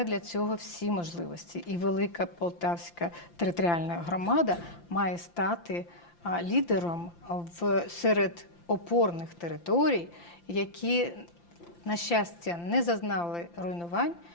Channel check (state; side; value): late; right; 5.8 ms